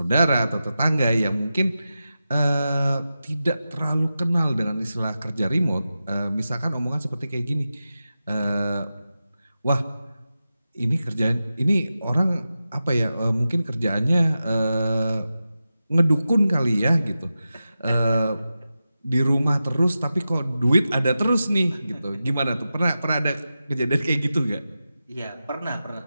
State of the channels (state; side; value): inverted; both; correlation -0.92